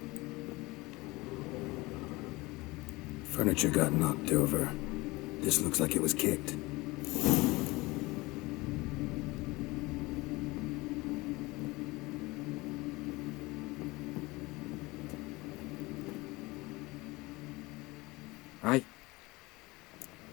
Furniture got knocked over. This looks like it was kicked. Aye.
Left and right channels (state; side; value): quieter; right; 22.3 dB